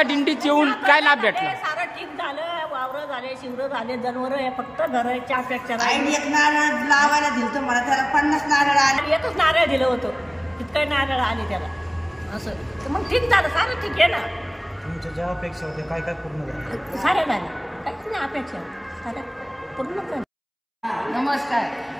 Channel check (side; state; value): both; identical; correlation 1.00